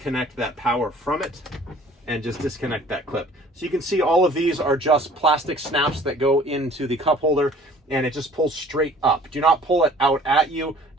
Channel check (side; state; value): both; normal; correlation 0.51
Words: that power from it and just disconnect that clip. So you can see all of these are just plastic snaps that go into the cup holder, and it just pulls straight up. Do not pull it out at you.